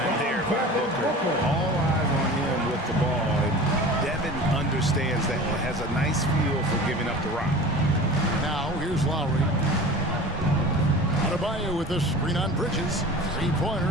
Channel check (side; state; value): both; normal; correlation 0.38